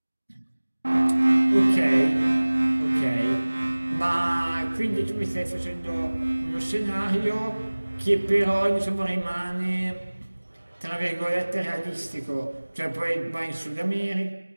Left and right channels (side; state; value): both; inverted; correlation -1.00